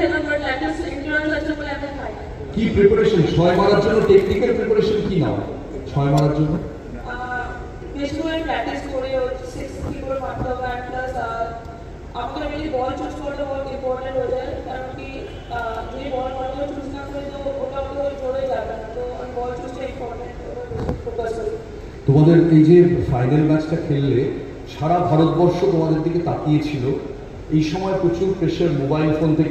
বাট ল্যাকটোজ ইন্টলারেন্স আছে বলে এখন খাই। কি প্রিপারেশন 6 মারার জন্য, টেকনিক্যাল প্রিপারেশন কি নাও 6 মারার জন্য? বেশি করে প্র্যাকটিস করে 6 কি করে মারতে হবে, আর প্লাস আমাকে মেনলি বল চুজ করতে বহুত ইম্পর্টেন্ট হয়ে যায়, কারণ কি যদি বল ভালো চুজ না করি তো ওটা আমাকে জোরে যাবে না, তো আমি বল চুজটা ইম্পর্টেন্ট ফোকাস করি। তোমাদের এই যে ফাইনাল ম্যাচটা খেললে, সারা ভারতবর্ষ তোমাদের দিকে তাকিয়েছিল। এই সময় প্রচুর প্রেশার মোবাইল ফোন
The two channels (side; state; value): both; identical; correlation 1.00